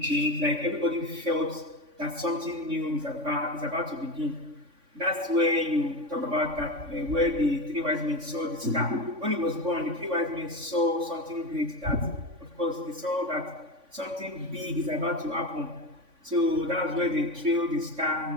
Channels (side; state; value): left; late; 3.5 ms